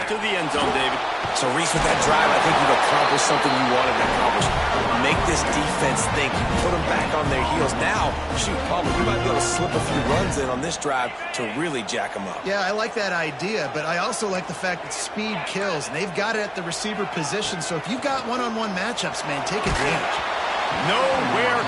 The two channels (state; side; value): identical; both; correlation 1.00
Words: to the end zone, David. So, Reese, with that drive, I think you've accomplished something you wanted to accomplish. Make this defense think. You put them back on their heels. Now, shoot, probably you might be able to slip a few runs in on this drive to really jack them up. Yeah, I like that idea, but I also like the fact that speed kills. And they've got it at the receiver position, so if you've got one-on-one matchups, man, take advantage. Nowhere